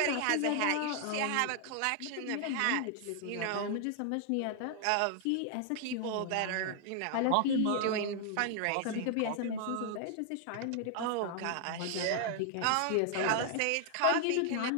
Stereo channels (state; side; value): different; both; correlation 0.00